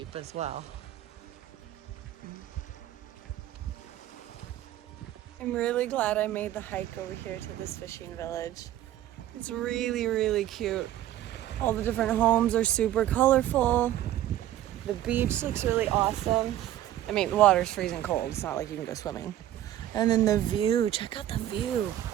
as well. I'm really glad I made the hike over here to this fishing village. It's really, really cute. All the different homes are super colorful. The beach looks really awesome. I mean, the water's freezing cold. It's not like you can go swimming. And then the view, check out the view.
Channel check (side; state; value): left; quieter; 12.9 dB